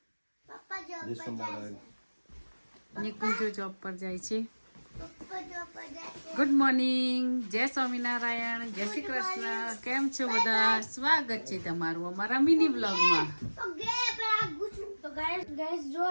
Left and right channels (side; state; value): both; inverted; correlation -1.00